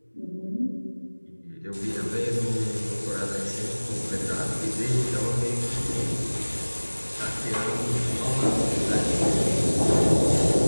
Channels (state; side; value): inverted; both; correlation -1.00